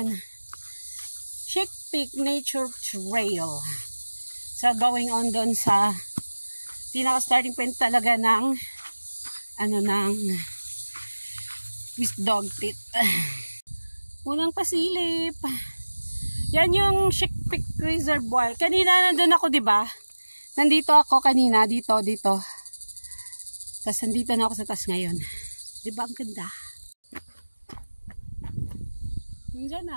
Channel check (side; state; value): both; inverted; correlation -1.00